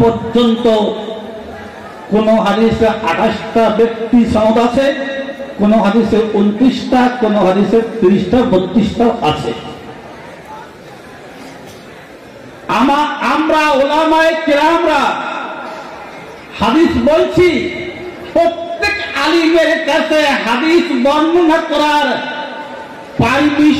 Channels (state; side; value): identical; both; correlation 1.00